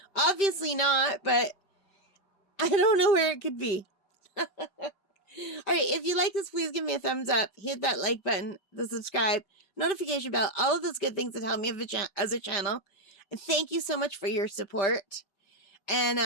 Obviously not, but I don't know where it could be. All right, if you like this, please give me a thumbs up. Hit that like button, the subscribe, notification bell, all of those good things that help me as a channel. And thank you so much for your support.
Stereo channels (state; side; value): late; right; 5.3 ms